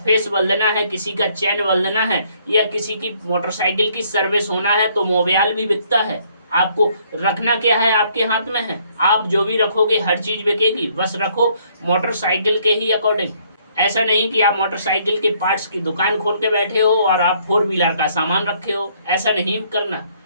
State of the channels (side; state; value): both; inverted; correlation -0.66